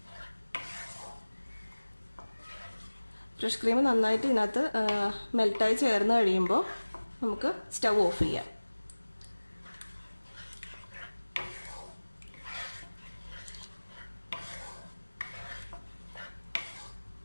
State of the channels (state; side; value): inverted; both; correlation -1.00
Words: ഫ്രഷ് ക്രീം നന്നായിട്ട് ഇതിനകത്ത് മെൽറ്റായി ചേർന്ന് കഴിയുമ്പോൾ നമുക്ക് സ്റ്റവ് ഓഫ് ചെയ്യാം.